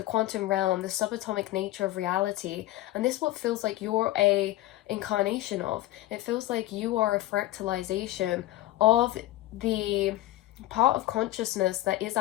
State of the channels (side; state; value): right; quieter; 16.1 dB